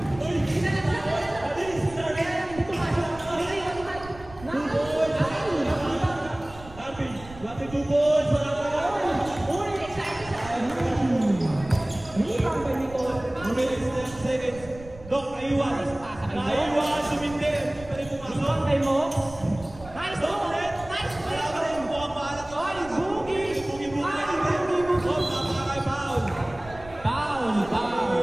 Naiwan, sumindir. Pwede pumasok. Kay mo. Nice to. Nice to. Wala ka rin. Buwang bahalat. Ay, Boogie. Boogie. Napakakay foul. Foul.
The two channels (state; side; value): noise; right; rumble, 18 dB below the sound